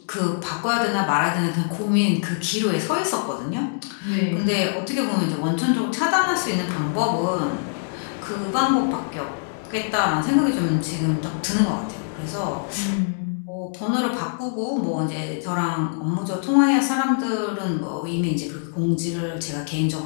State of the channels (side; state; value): right; silent; digital silence